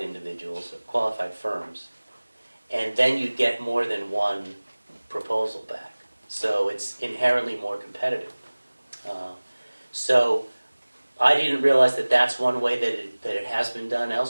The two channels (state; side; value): inverted; both; correlation -1.00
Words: individuals, qualified firms, and then you'd get more than one proposal back. So it's inherently more competitive. So I didn't realize that that's one way that it has been done